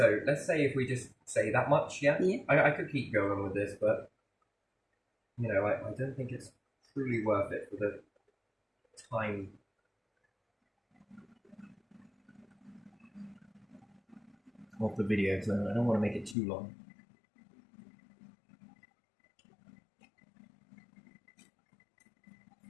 let's say if we just say that much, I could keep going with this, but I don't think it's truly worth it for the time. of the video, so I don't want to make it too long.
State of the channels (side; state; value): right; drops out; at 16.4 s